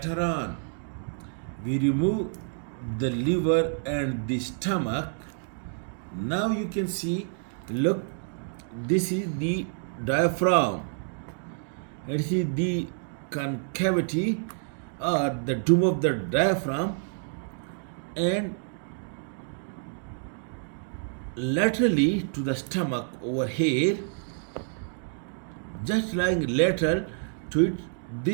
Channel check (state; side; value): silent; left; 59 dB below the other